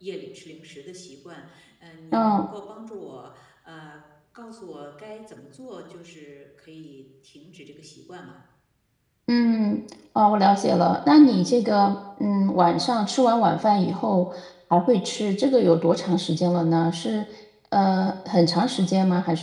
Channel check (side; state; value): both; identical; correlation 1.00